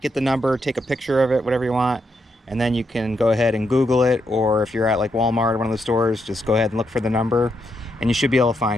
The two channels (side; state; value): both; normal; correlation 0.80